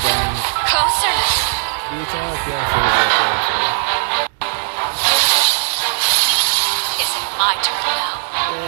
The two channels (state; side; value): silent; left; digital silence